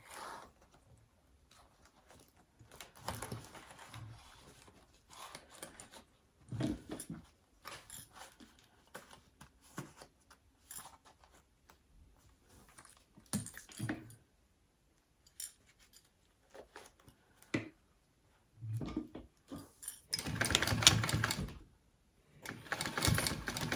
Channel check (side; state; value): both; identical; correlation 1.00